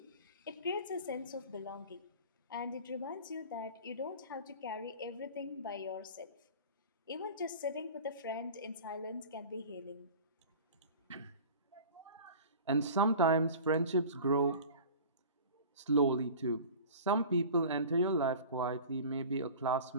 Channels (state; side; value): inverted; both; correlation -0.39